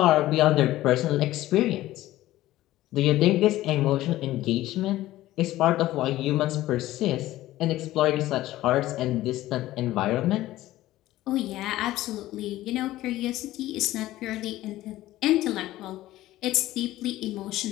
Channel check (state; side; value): quieter; right; 15.6 dB